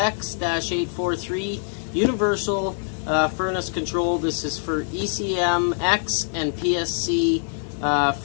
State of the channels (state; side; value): silent; right; 63 dB below the other